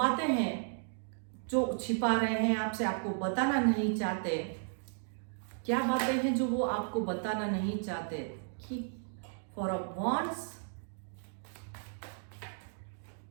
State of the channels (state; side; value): silent; left; digital silence